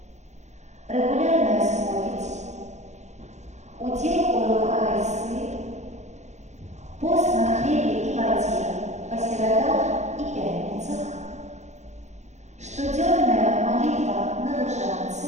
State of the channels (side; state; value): left; late; 0.33 ms